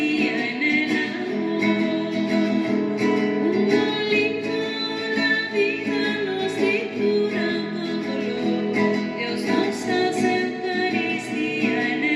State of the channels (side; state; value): both; identical; correlation 1.00